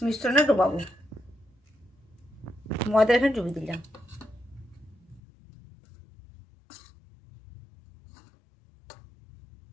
মিশ্রণে ডোবাবো। ময়দা এখানে ডুবিয়ে দিলাম।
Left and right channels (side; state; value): right; drops out; at 5.2 s